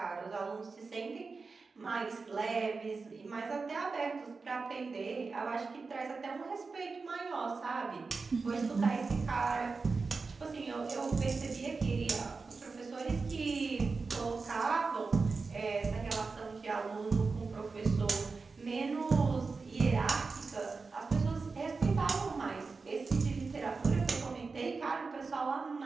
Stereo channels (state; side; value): quieter; left; 4.4 dB